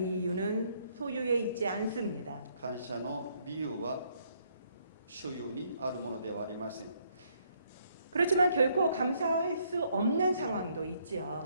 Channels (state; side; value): inverted; both; correlation -0.69